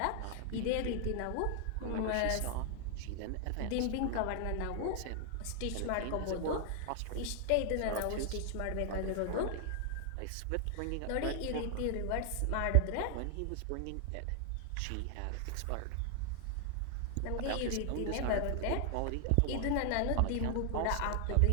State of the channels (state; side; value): different; both; correlation 0.00